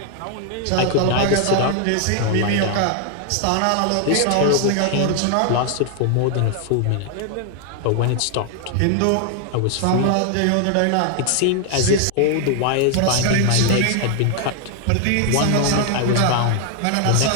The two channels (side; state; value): both; different; correlation 0.00